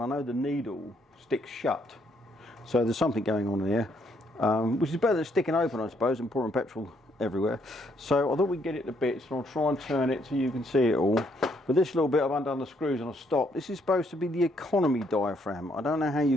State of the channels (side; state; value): both; normal; correlation 0.71